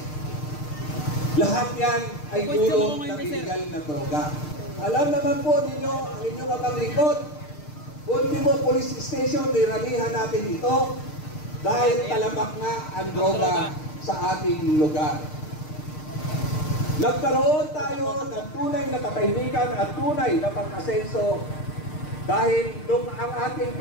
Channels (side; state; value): right; late; 6.6 ms